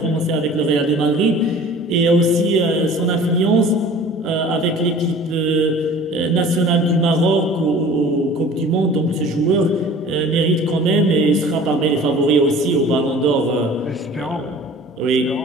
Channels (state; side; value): normal; both; correlation 0.45